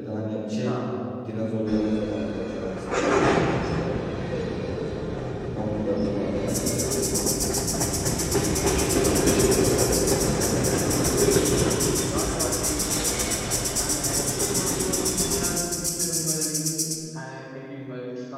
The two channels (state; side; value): identical; both; correlation 1.00